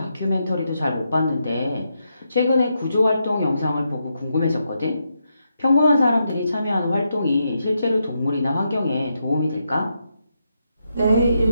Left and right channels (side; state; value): both; inverted; correlation -0.82